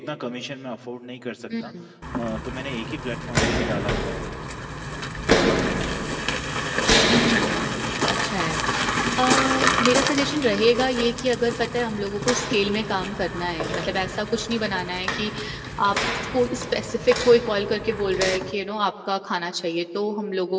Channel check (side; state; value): both; identical; correlation 1.00